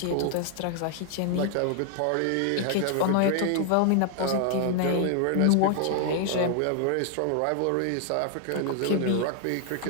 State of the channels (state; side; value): different; both; correlation 0.00